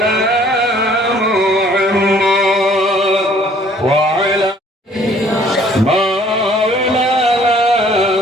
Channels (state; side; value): normal; both; correlation 0.57